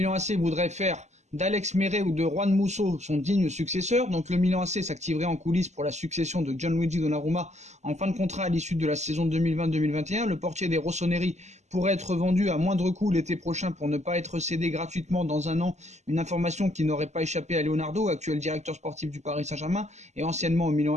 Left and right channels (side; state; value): left; late; 0.33 ms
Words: AC voudrait faire d'Alex Meret ou de Juan Musso son digne successeur. Donc le Milan AC s'activerait en coulisses pour la succession de Gianluigi Donnarumma en fin de contrat à l'issue de la saison 2020-2021. Le portier des Rossoneri pourrait être vendu à moindre coût l'été prochain pour ne pas être cédé gratuitement dans un an. Une information qui n'aurait pas échappé à Leonardo, actuel directeur sportif du Paris Saint-Germain et anciennement au Milan